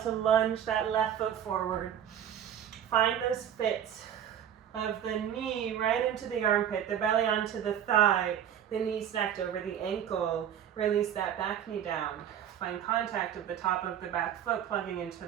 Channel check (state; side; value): quieter; left; 9.6 dB